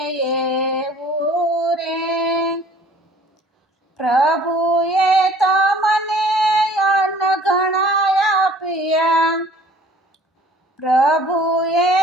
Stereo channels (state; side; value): normal; both; correlation 0.52